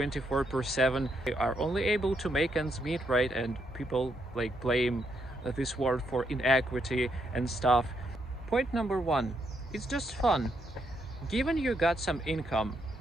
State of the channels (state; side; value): normal; both; correlation 0.77